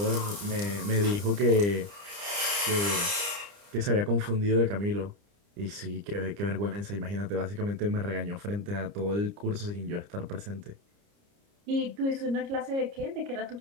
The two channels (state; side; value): late; left; 30 ms